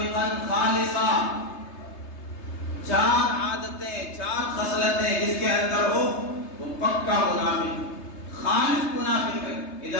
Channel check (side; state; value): right; late; 3.3 ms